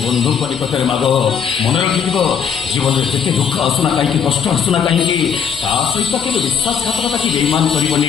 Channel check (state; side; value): quieter; right; 7.2 dB